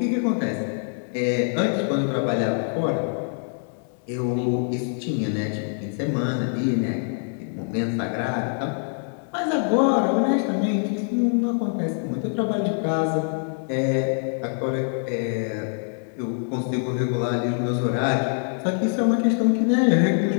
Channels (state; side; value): silent; right; 60 dB below the other